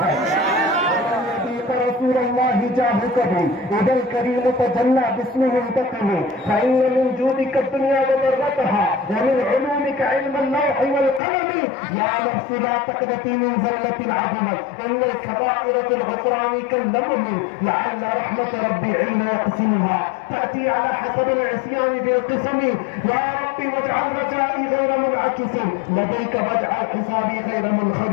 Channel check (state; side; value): drops out; right; at 11.2 s